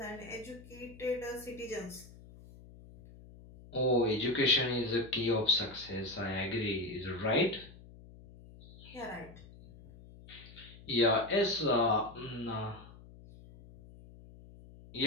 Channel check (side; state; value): left; noise; hum, 19 dB below the sound